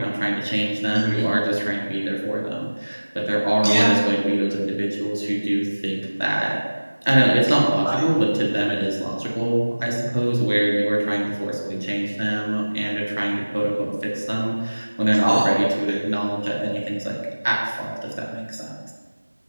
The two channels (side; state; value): both; inverted; correlation -1.00